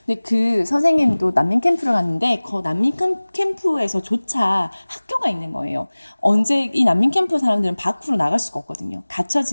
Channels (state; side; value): inverted; both; correlation -1.00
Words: 근데 그 선생님도 난민 캠프를 갔는데 그 난민 캠프에서조차 학교가 있는 거예요. 이 난민 캠프 사람들은 밖으로 나갈 수가 없거든요. 갇혀